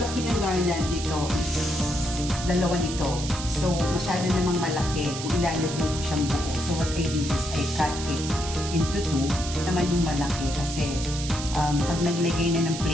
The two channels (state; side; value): noise; right; hiss, 8 dB below the sound